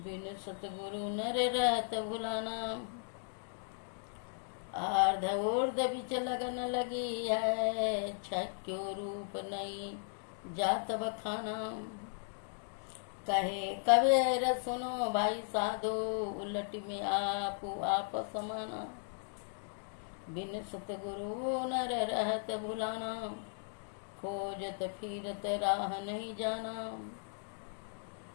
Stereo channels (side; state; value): right; silent; digital silence